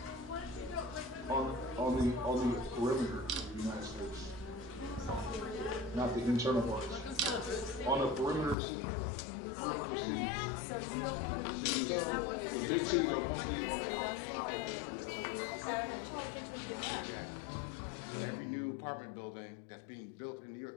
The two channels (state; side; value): drops out; right; at 8.6 s